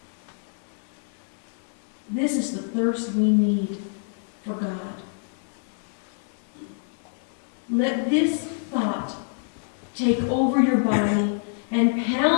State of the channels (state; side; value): silent; right; digital silence